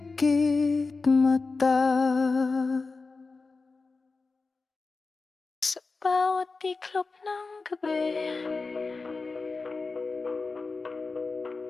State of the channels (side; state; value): right; quieter; 4.0 dB